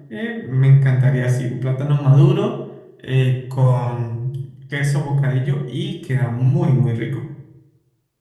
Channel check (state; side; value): identical; both; correlation 1.00